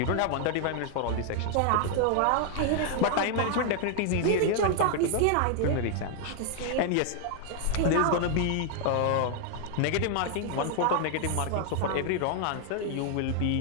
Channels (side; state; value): both; different; correlation 0.00